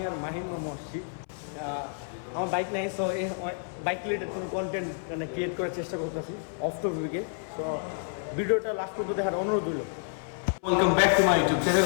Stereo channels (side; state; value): right; silent; 58 dB below the other